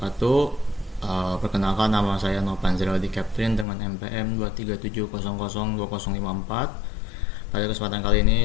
Perkenalkan, nama saya Novanzil di Captain dengan NPM 237002054. Pada kesempatan kali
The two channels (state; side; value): drops out; right; at 3.7 s